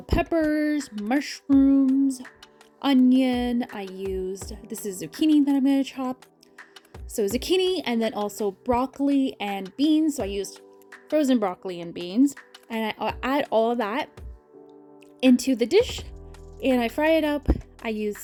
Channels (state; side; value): identical; both; correlation 1.00